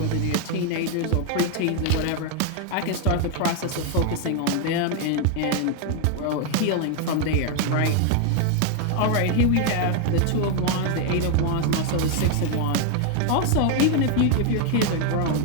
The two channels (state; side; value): different; both; correlation 0.01